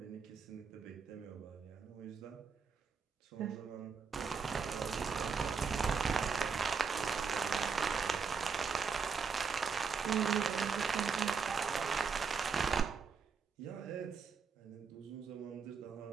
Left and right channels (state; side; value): quieter; left; 5.5 dB